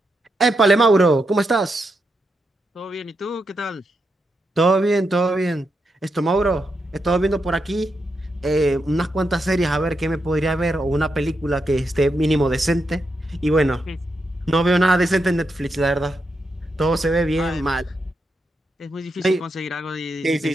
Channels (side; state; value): both; normal; correlation 0.84